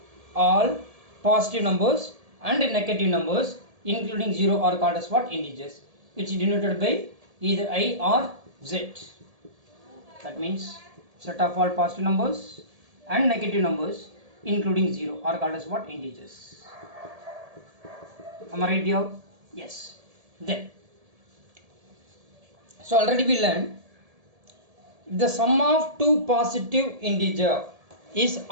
all positive numbers and negative numbers including 0 are called as what? Integers, which is denoted by either I or Z. That means set of all positive numbers and negative numbers including 0 are called as what? Integers. Am I right here? Yes. Then, so already we learned the sum of two positive integer is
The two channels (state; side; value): late; left; 1.7 ms